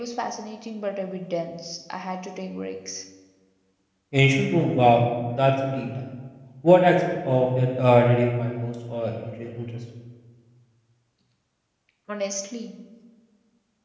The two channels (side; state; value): both; identical; correlation 1.00